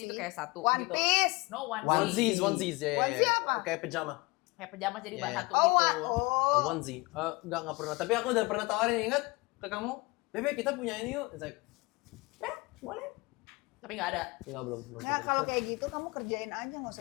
itu kayak satu One gitu. Piece. No onesie. Onesie. Onesies, ya, ya, Onesie ya. apa? Kayak pajama. Kayak pejama jadi Iya, bahan iya. satu Oh, gitu. oh. Onesie. Nggak pernah. Tapi aku udah pernah tawarin, ingat ke kamu? Bebe, kita punya ini yuk. It's like, Boleh. Tapi nggak ada. enggak, belum. Nah, kalau kayak gitu kamu kerjain aja, nggak usah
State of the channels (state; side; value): quieter; right; 25.2 dB